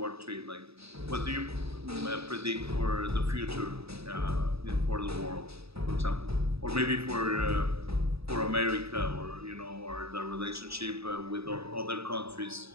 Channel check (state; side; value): late; left; 0.78 ms